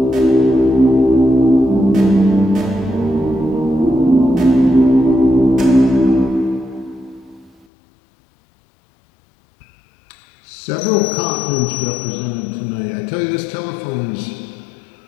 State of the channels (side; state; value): right; drops out; at 7.7 s